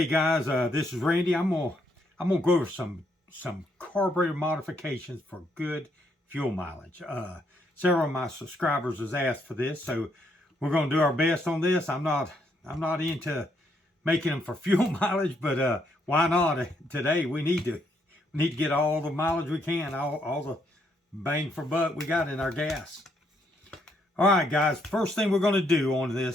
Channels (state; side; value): normal; both; correlation 0.74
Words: guys, this is Randy. I'm gonna go over some carburetor modifications for good fuel mileage. Several of my subscribers has asked for this, so we're gonna do our best on this. I'm not into making them for fuel mileage, but why not? Today we need to get all the mileage we can, all the bang for buck we got in our gas. All right, guys, first thing we're going to do on